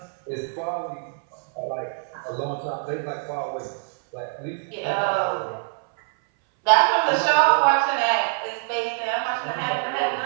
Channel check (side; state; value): left; silent; 62 dB below the other